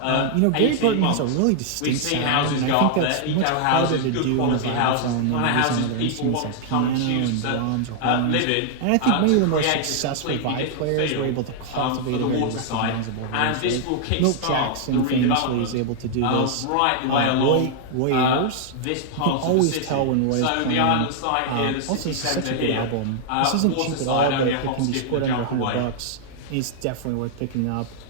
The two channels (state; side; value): different; both; correlation -0.01